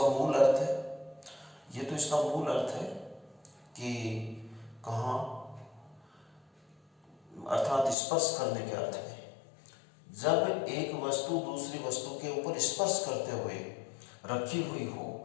मूल अर्थ है, ये तो इसका मूल अर्थ है कि कहाँ, अर्थात स्पर्श करने के अर्थ में। जब एक वस्तु दूसरी वस्तु के ऊपर स्पर्श करते हुए रखी हुई हो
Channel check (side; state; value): right; drops out; at 8.0 s